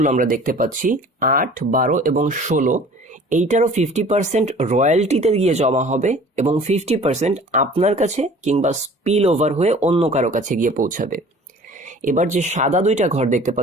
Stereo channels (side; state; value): both; normal; correlation 0.47